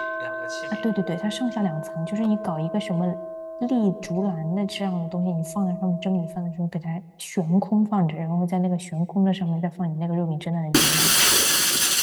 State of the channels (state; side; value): identical; both; correlation 1.00